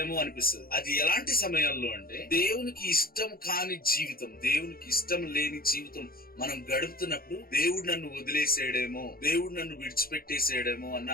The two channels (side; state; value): right; late; 0.43 ms